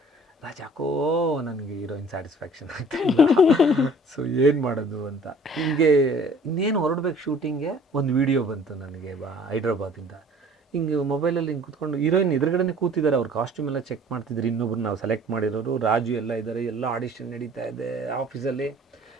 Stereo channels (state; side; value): normal; both; correlation 0.51